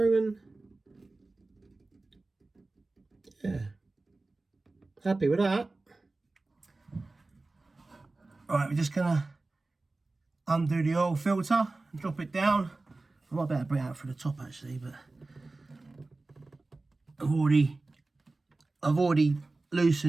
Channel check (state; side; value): quieter; left; 3.3 dB